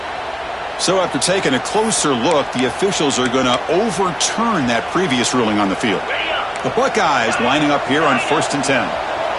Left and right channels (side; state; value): both; identical; correlation 1.00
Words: So after taking a closer look, the officials are going to overturn that previous ruling on the field. The Buckeyes lining up here on 1st and 10.